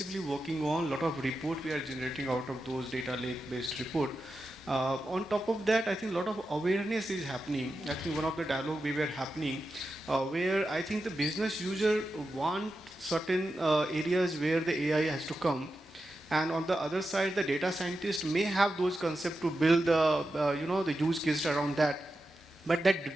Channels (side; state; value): both; normal; correlation 0.90